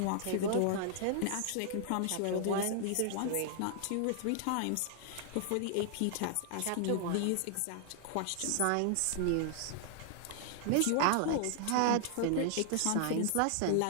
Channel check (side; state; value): both; different; correlation 0.00